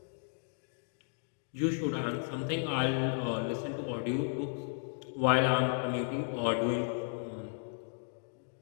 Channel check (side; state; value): right; silent; 55 dB below the other